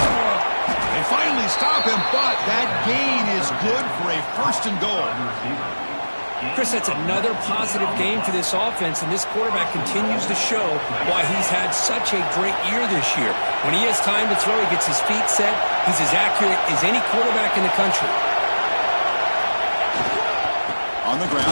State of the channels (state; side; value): inverted; both; correlation -1.00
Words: They finally stop him, but that gain is good for a 1st and goal. Chris, that's another positive game for this offense, and this quarterback continues to show why he's had such a great year this year. When he has time to throw, he gets his feet set. He's as accurate as any quarterback in the country. On the